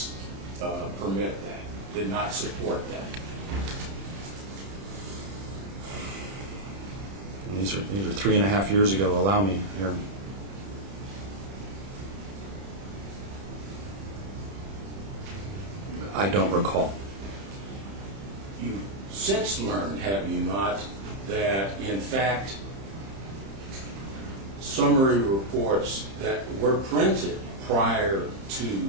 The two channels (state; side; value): late; left; 31 ms